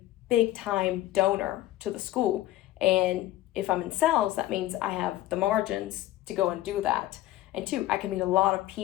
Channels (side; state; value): right; quieter; 15.1 dB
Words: big time donor to the school. And if I'm in sales, that means I have the margins to go and do that. And two, I can meet a lot of